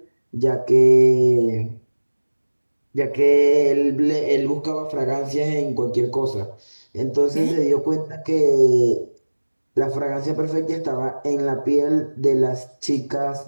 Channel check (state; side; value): inverted; both; correlation -1.00